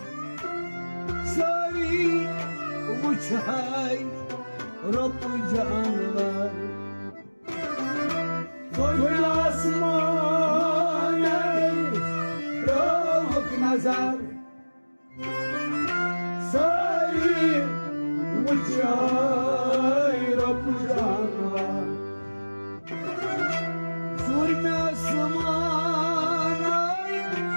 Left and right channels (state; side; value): inverted; both; correlation -1.00